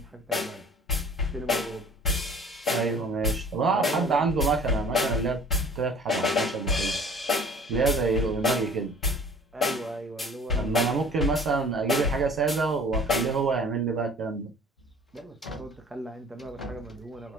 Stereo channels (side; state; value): both; normal; correlation 0.49